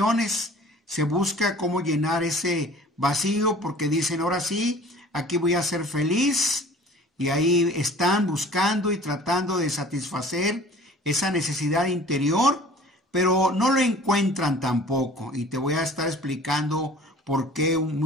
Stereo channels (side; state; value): both; normal; correlation 0.47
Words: se busca cómo llenar ese vacío porque dicen, ahora sí, aquí voy a ser feliz. Y ahí están buscando y tratando de satisfacer esa necesidad interior, pero no lo encuentran tampoco. Y te voy a estar explicando por qué